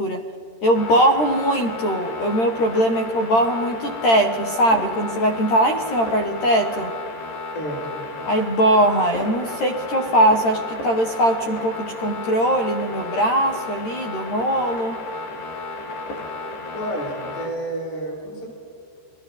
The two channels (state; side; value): late; right; 13 ms